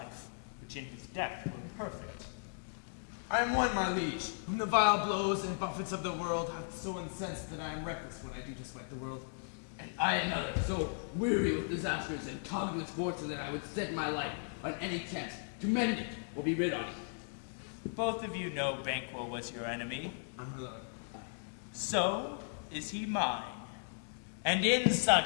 which in his death were perfect. I am one, my liege, whom the vile blows and buffets of the world have so incensed that I am reckless when I do despite the world. And I another, so weary with disasters and tugged with fortune that I would set my life on any chance to mend it or be rid on it. Both of you know Banquo was your enemy. My lord. So is he mine. And in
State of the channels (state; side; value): silent; right; digital silence